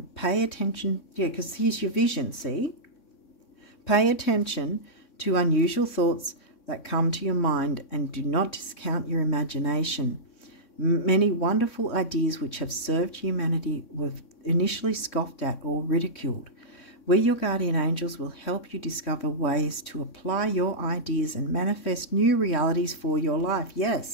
Pay attention, because here's your vision, see? Pay attention to unusual thoughts that come to your mind and do not discount your imagination. Many wonderful ideas which have served humanity were initially scoffed at or ridiculed. We, your guardian angels, will help you discover ways to apply your ideas and manifest new realities for your life.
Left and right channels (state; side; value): late; right; 3.6 ms